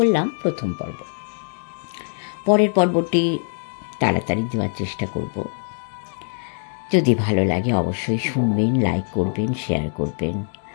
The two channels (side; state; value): right; silent; digital silence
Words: প্রথম পর্ব। পরের পর্বটি তাড়াতাড়ি দেওয়ার চেষ্টা করব। যদি ভালো লাগে অবশ্যই শুনবেন, লাইক করবেন, শেয়ার করবেন,